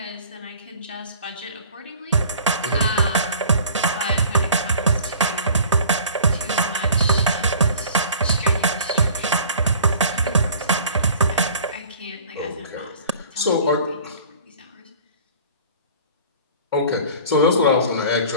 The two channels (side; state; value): both; inverted; correlation -0.47